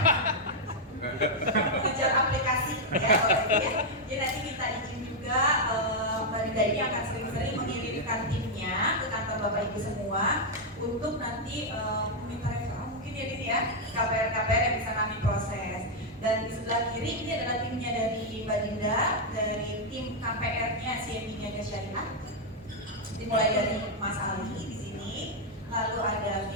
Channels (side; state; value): both; normal; correlation -0.01